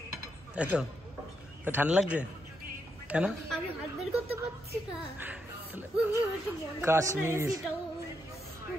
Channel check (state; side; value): normal; both; correlation 0.80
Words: তাই তো? ঠান্ডা লাগছে কেন? আমি হাত বের করতে পারছি না। কাশ্মীর